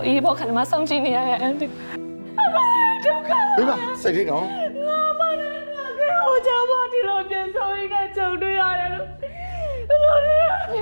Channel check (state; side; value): inverted; both; correlation -1.00